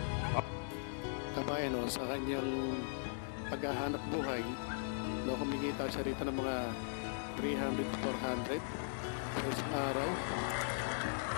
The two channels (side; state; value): right; silent; 52 dB below the other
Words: Kabayan, no, sa kanyang paghahanap buhay, no, kumikita siya rito ng mga 300-400 per isang araw.